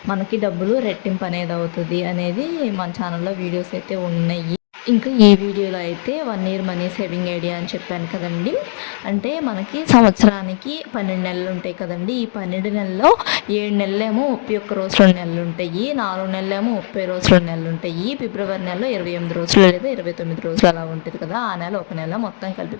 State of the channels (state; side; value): silent; right; digital silence